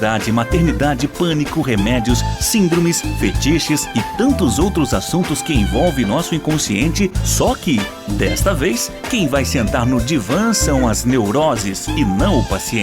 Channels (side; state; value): both; identical; correlation 1.00